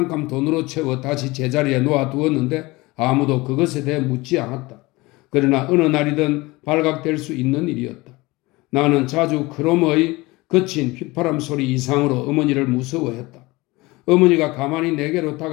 돈으로 채워 다시 제자리에 놓아두었는데 아무도 그것에 대해 묻지 않았다. 그러나 어느 날이든 발각될 수 있는 일이었다. 나는 자주 그놈의 거친 휘파람 소리 이상으로 어머니를 무서워했다. 어머니가 가만히 내게로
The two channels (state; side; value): quieter; right; 22.1 dB